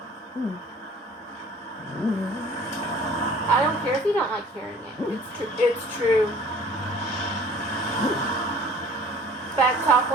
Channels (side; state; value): both; normal; correlation 0.50